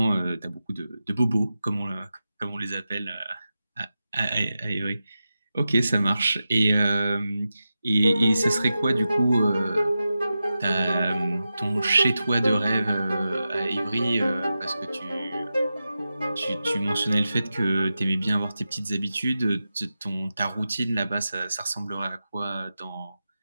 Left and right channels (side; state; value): both; inverted; correlation -0.92